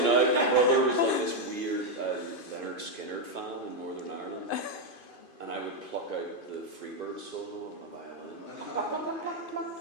out. My brother was like this weird Leonard Skinner fan in Northern Ireland, and I would pluck out the Freebird solo on my violin. And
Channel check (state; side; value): late; right; 2.5 ms